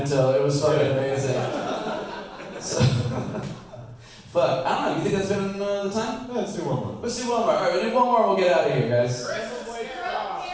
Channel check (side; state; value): both; identical; correlation 1.00